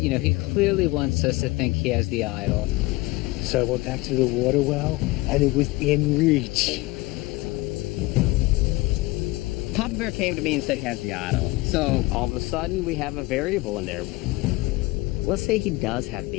clearly wants us to think he has the idol. So I went back to the water well, and it was in reach. Papa Bear came to me and said he has the idol. So All of a sudden, we have a variable in there. Let's say he does have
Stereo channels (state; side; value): quieter; right; 21.2 dB